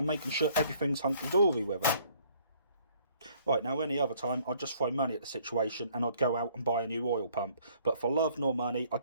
making sure everything's hunky-dory with it. Right, now any other time I'd just throw money at the situation and I'd go out and buy a new oil pump, but for love nor money I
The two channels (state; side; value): inverted; both; correlation -0.61